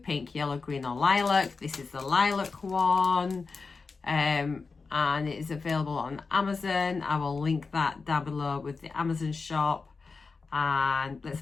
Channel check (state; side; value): quieter; right; 4.5 dB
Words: yellow, green, or lilac. This is the lilac one, and it is available on Amazon. I will link that down below with the Amazon shop. And let's